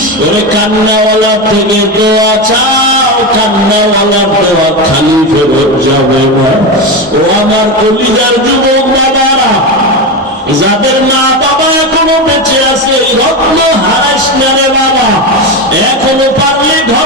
থেকে দোয়া চাও, কান্নাওয়ালার দোয়া খালি ফেরত যাবে না। ও আমার কলিজার যুবক বাবারা, যাদের মা বাবা এখনো বেঁচে আছে, রত্ন হারাস না রে বাবা। এখনো পারলে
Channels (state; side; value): normal; both; correlation 0.17